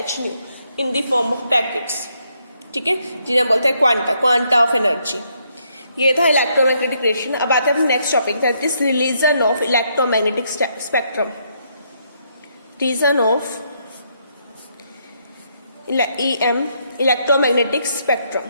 h new in the form of packets. ठीक है, जिन्हें बोलते हैं क्वांटा ऑफ एनर्जी। ये था इलेक्ट्रोमैग्नेटिक रेडिएशन। अब आते हैं next topic, that is region of electromagnetic spectrum. Region of EM electromagnetic spectrum.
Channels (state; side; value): inverted; both; correlation -0.74